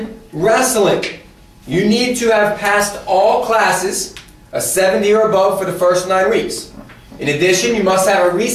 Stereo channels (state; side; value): identical; both; correlation 1.00